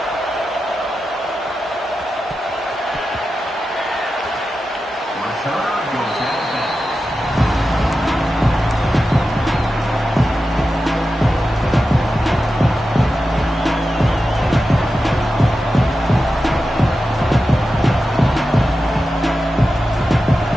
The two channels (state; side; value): normal; both; correlation 0.91